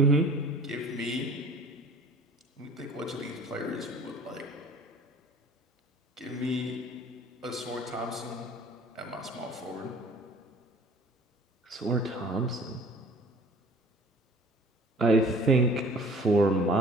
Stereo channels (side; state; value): both; normal; correlation 0.48